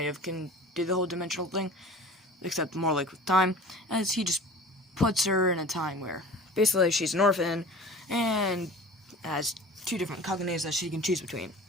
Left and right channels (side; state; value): both; normal; correlation 0.40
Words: of can do the whole dimensional thing, except more like with time, as he just puts her in a time where, basically, she's an orphan, and has 2 different Kagenes that she can choose between.